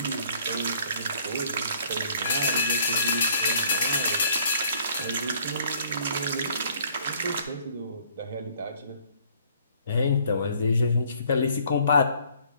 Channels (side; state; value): both; inverted; correlation -0.60